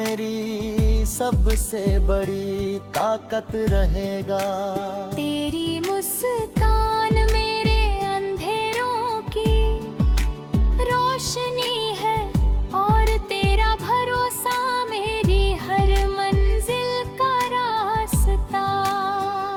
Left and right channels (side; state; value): both; identical; correlation 1.00